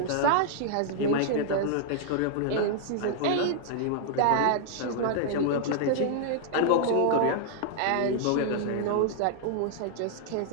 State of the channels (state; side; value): different; both; correlation -0.01